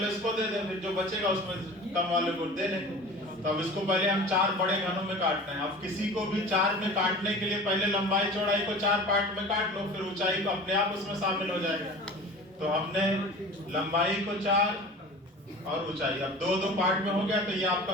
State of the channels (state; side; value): normal; both; correlation 0.39